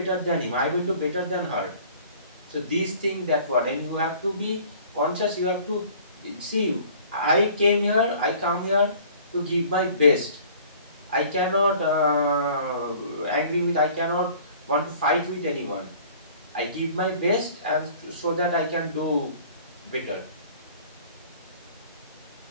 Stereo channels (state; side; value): inverted; both; correlation -0.50